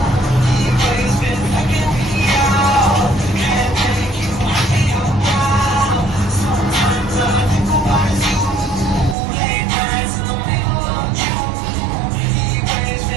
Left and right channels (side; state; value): left; drops out; at 9.2 s